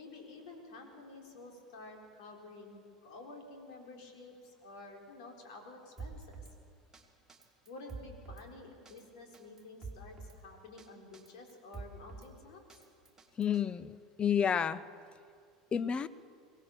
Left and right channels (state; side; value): quieter; right; 6.6 dB